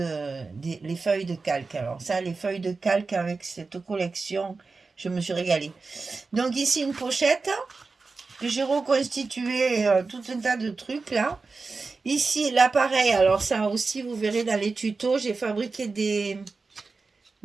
les feuilles de calque. Alors ça, les feuilles de calque avec cette collection, je me suis régalée. Donc ici, une pochette que j'ai reconstitué tout un tas de trucs là. Ici, l'appareil, alors ça aussi, vous verrez dans les tutos, j'ai fabriqué des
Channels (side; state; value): left; quieter; 4.1 dB